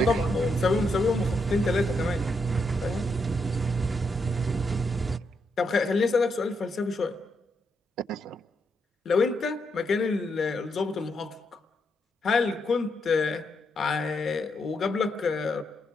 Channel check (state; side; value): normal; both; correlation 0.80